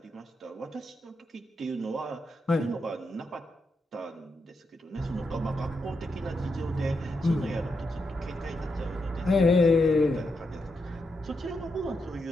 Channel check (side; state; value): both; normal; correlation 0.84